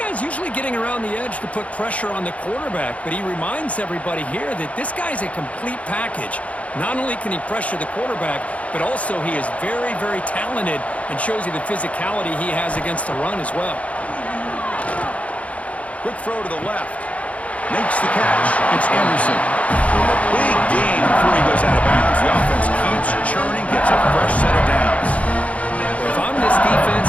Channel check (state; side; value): late; right; 0.066 ms